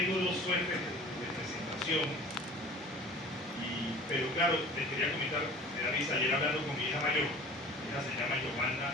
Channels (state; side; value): normal; both; correlation 0.43